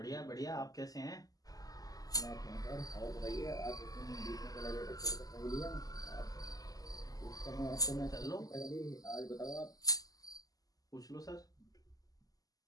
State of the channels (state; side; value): late; right; 0.17 ms